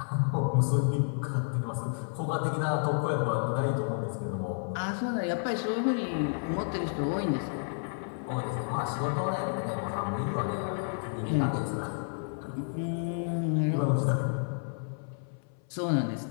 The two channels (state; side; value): silent; right; 57 dB below the other